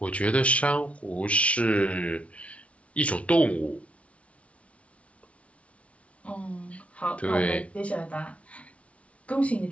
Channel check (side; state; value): right; late; 0.063 ms